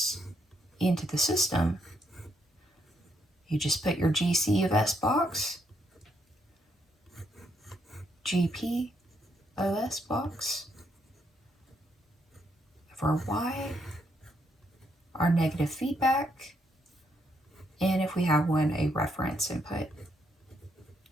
into the system, you just put your GC of S box, GP of S box for y, our negative feedback, and if we have one, a reference input.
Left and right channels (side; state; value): both; normal; correlation 0.76